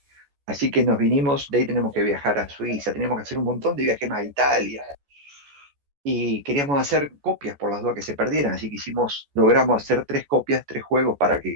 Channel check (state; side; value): late; left; 14 ms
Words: Así que nos vinimos, de ahí tenemos que viajar a Suiza, tenemos que hacer un montón de viajes más a Italia, y queríamos hacer copias por las dudas que se perdieran, así que logramos hacer 3 copias, 3 juegos para